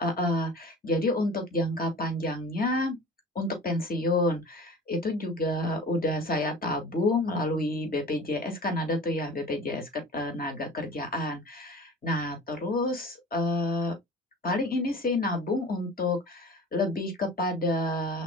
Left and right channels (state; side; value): normal; both; correlation 0.40